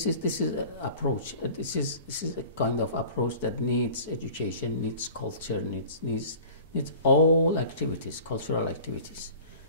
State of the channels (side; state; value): both; inverted; correlation -0.43